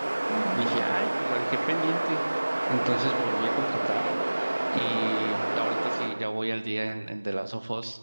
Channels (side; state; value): both; inverted; correlation -1.00